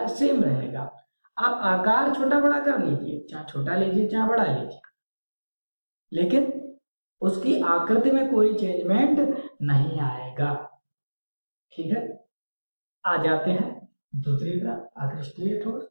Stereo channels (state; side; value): inverted; both; correlation -1.00